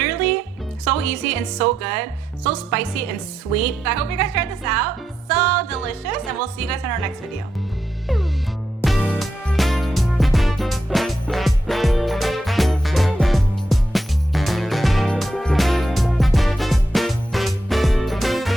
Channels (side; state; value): both; normal; correlation 0.84